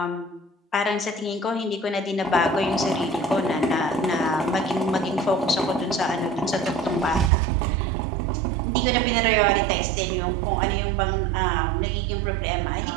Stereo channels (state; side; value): drops out; left; at 7.3 s